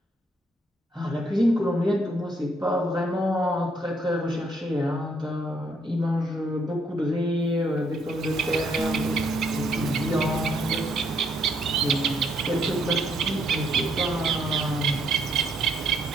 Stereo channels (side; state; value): both; normal; correlation 0.71